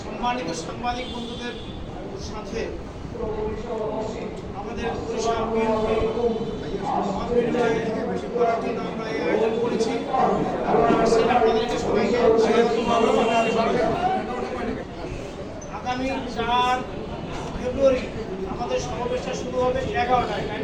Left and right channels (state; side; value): identical; both; correlation 1.00